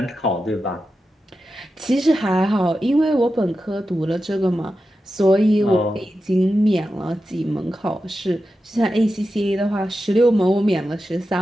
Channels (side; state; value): both; normal; correlation 0.91